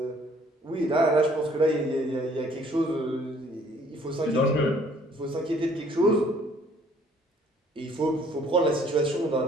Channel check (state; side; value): normal; both; correlation 0.60